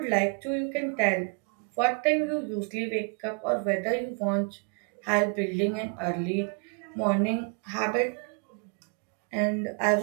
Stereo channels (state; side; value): quieter; left; 38.5 dB